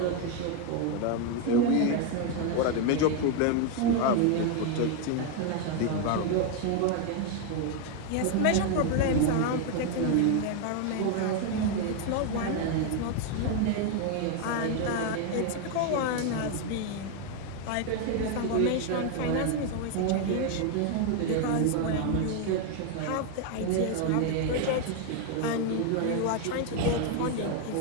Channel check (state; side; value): different; both; correlation 0.01